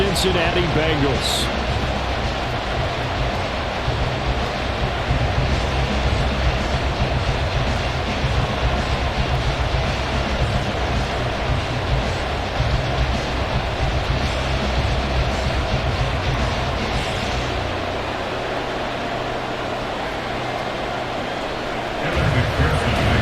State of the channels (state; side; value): identical; both; correlation 1.00